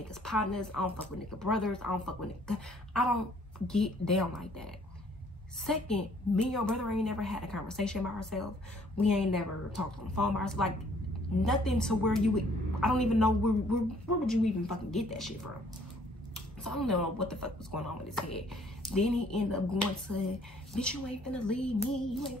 partners. I don't fuck with niggas' brothers. I don't fuck with niggas. I don't get down like that. Second, me and your brother ain't never had a conversation by ourselves. We ain't never talked on the phone by ourselves. Like, nothing to where you would, I don't even know where would you even fucking get that shit from. So I don't know what the fuck was going on with his head. Then he ended up going to, bitch, you ain't finna leave me. You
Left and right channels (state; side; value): normal; both; correlation 0.61